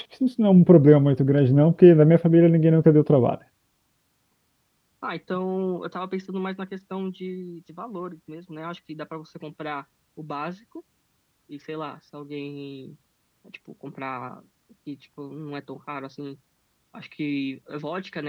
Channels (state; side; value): identical; both; correlation 1.00